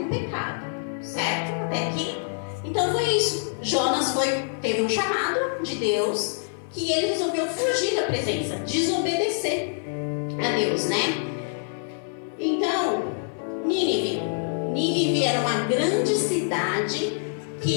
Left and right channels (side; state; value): right; silent; digital silence